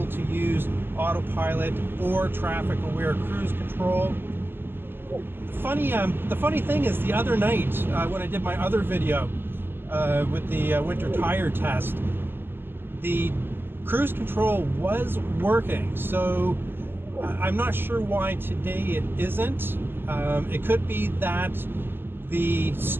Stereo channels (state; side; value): late; left; 0.10 ms